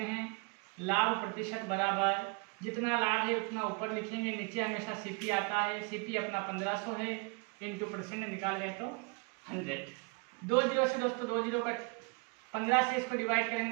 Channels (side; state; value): left; quieter; 32.1 dB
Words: हैं। लाभ प्रतिशत बराबर जितना लाभ है उतना ऊपर लिखेंगे, नीचे हमेशा सीपी आता है, सीपी अपना 1500 है, इंटू परसेंट निकाल गए तो 100। 2 जीरो से दोस्तों 2 जीरो कट, 15 से इसको डिवाइड